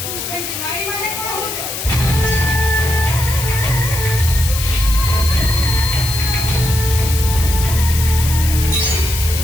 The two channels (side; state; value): left; noise; hiss, 6 dB below the sound